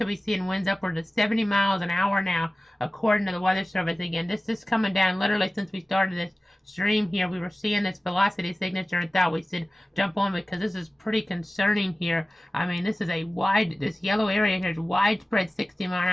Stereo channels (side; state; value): both; normal; correlation 0.97